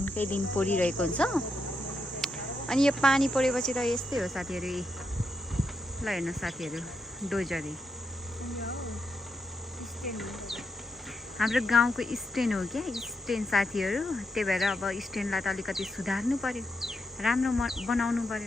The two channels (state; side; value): normal; both; correlation 0.83